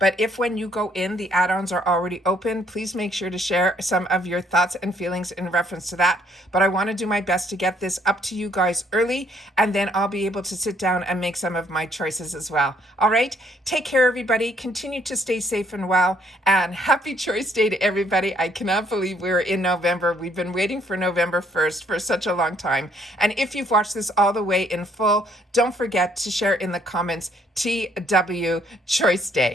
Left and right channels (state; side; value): normal; both; correlation 0.67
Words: if when you go in, the add-ons are already open, please make sure to share some of your thoughts and feelings in reference to that. But I want to do my best to get this up to you guys early, and then I'll be able to sit down and make some of my choices as well. All right, take care, everybody. Continue to stay safe and well, and happy Choice Day to everybody. I cannot believe we're in November. We've been waiting for November 1st for such a long time. And if you've watched this all the way in full, don't forget to share in the comments TW Choice